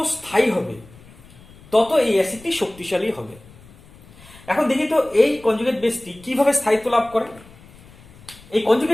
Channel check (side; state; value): left; noise; rumble, 23 dB below the sound